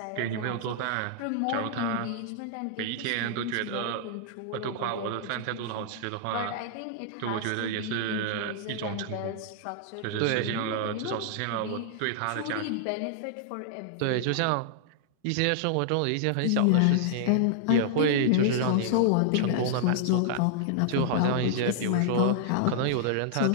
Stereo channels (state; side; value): different; both; correlation -0.01